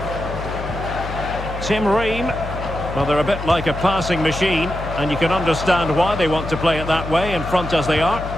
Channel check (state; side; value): noise; left; hum, 8 dB below the sound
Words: Tim Ream. Well, they're a bit like a passing machine, and you can understand why they want to play it that way, in front as they are.